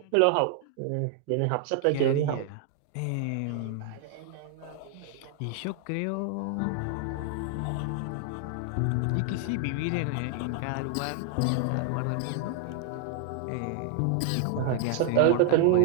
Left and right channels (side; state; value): both; different; correlation 0.00